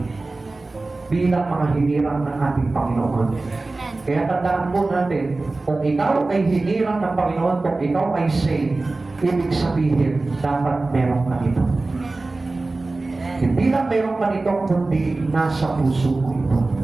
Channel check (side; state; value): left; quieter; 3.3 dB